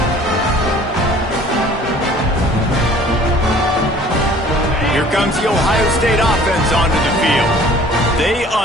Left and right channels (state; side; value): normal; both; correlation 0.51